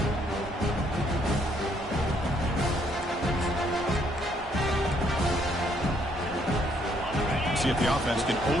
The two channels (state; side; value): normal; both; correlation 0.69